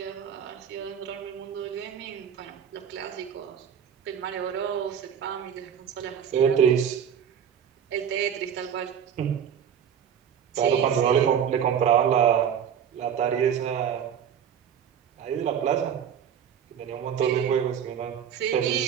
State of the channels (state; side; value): quieter; left; 8.4 dB